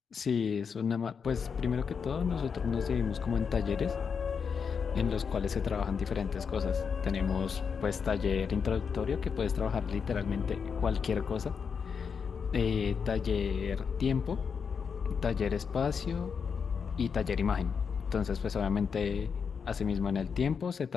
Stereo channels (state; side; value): quieter; right; 6.2 dB